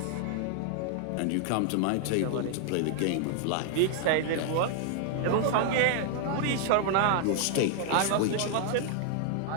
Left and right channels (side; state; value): both; different; correlation 0.00